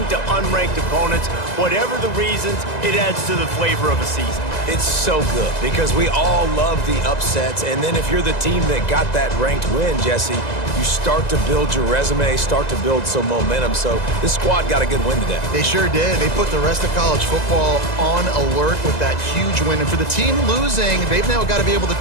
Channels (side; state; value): right; late; 1.9 ms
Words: to unranked opponents. Whatever the reasons, it adds to the flavor of a season. It's so good because we all love the upsets, and then if you're the team that got that ranked win, Jesse, you start to build your resume, start to build some momentum. So this squad got a good win today. They sure did. They put the rest of college football on alert with that huge win. And for the team losing, they've now got to be able to